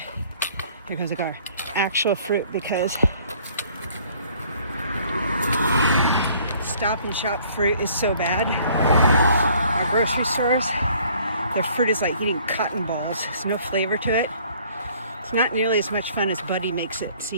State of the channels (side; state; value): both; inverted; correlation -0.57